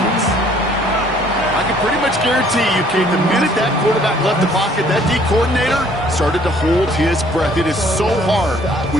I can pretty much guarantee you, Kate, the minute that quarterback left the pocket, that D coordinator started to hold his breath. It is so hard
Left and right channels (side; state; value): both; normal; correlation 0.59